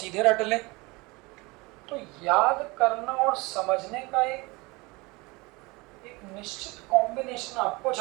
रट लें। तो याद करना और समझने का एक निश्चित कॉम्बिनेशन आपको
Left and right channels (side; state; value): left; quieter; 24.7 dB